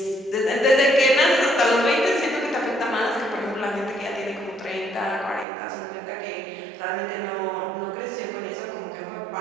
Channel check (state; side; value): drops out; left; at 5.5 s